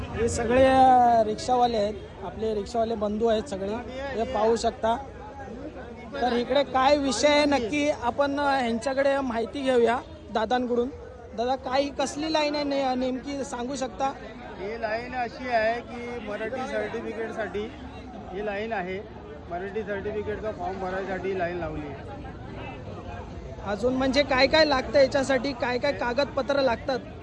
हे सगळे रिक्षावाले आहेत, आपले रिक्षावाले बंधू आहेत सगळे, हे पाहू शकता. तर इकडे काय विषय आहे नक्की आपण ह्यांच्याकडे माहिती घेऊया दादांकडून. दादा, काय कसली लाईन आहे नेमकी सांगू शकता? ही लाईन अशी आहे की मराठी सर्टिफिकेटसाठी ही लाईन आहे. मराठी सर्टिफिकेटचा फॉर्म भरायसाठी लाईन लावली आहे. अजून म्हणजे काय काय लागतं याच्यासाठी? काय काय कागदपत्र लागतात?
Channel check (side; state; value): both; identical; correlation 1.00